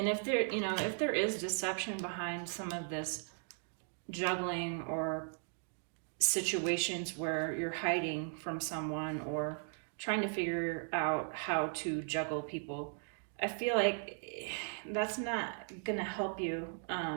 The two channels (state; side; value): silent; left; 53 dB below the other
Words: if there is deception behind some of this juggling or situations where you're hiding from someone or trying to figure out how to juggle people, I feel like that's not gonna help you.